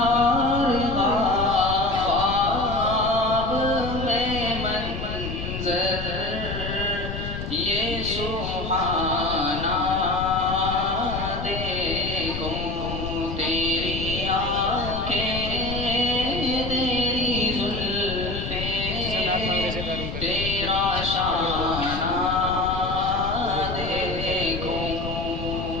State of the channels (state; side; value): noise; left; rumble, 6 dB below the sound